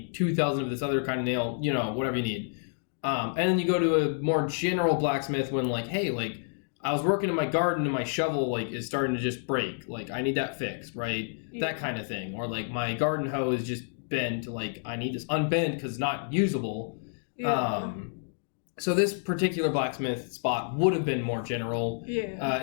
2,000 of this other kind of nail. Whatever you need. And then you go to a more general blacksmith when hey, I was working in my garden and my shovel is starting to just break. I need that fixed, right? Yeah. That kind of thing. Or my garden hoe is just bent. I need this unbent because it's not usable. Yeah. So this particular blacksmith spot would have been more general. Yeah.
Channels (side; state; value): right; silent; digital silence